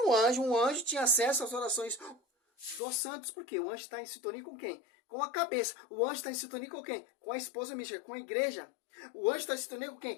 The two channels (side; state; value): right; drops out; at 2.8 s